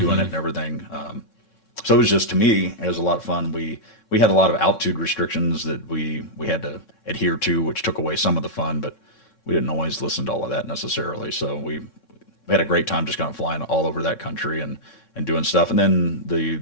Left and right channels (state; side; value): late; right; 3.6 ms